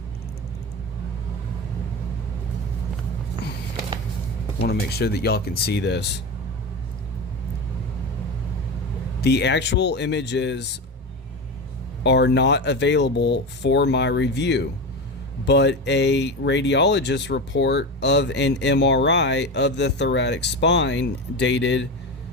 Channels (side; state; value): both; normal; correlation 0.22